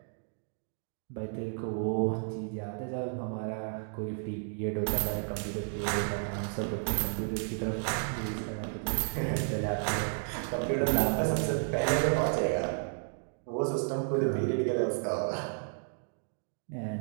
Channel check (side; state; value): left; silent; 56 dB below the other